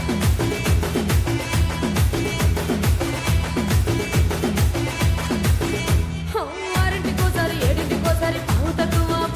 ఆరింటికోసారి ఏడింటికోసారి పావు తక్కువ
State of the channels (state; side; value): identical; both; correlation 1.00